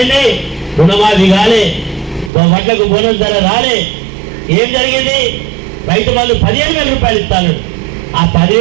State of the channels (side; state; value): left; drops out; at 2.3 s